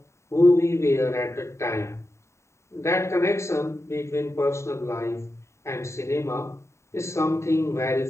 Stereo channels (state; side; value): late; right; 0.14 ms